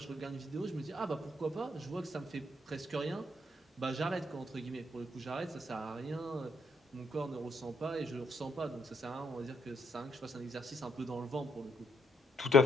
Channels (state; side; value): normal; both; correlation 0.73